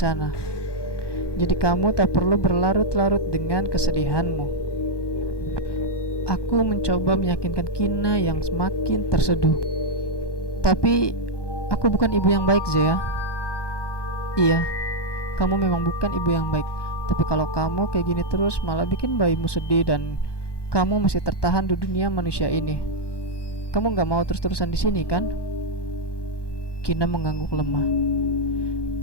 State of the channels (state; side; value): late; right; 1.2 ms